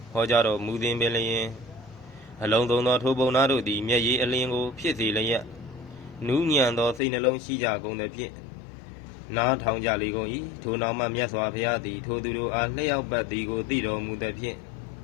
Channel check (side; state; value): right; drops out; at 7.0 s